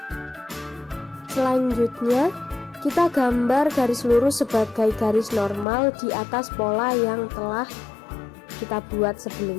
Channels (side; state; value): right; drops out; at 5.7 s